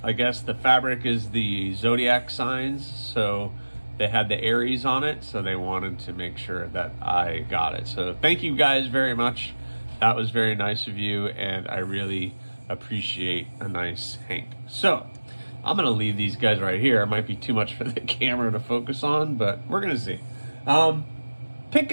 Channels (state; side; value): inverted; both; correlation -1.00